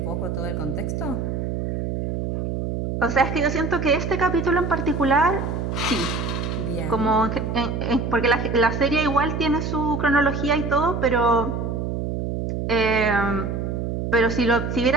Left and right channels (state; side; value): noise; right; hum, 3 dB below the sound